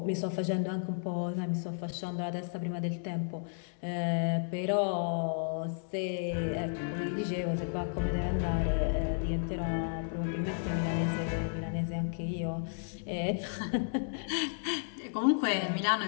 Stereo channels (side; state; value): right; silent; digital silence